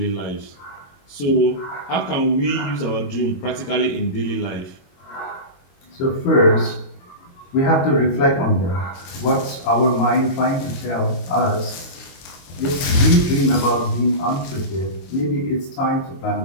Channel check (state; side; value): late; right; 22 ms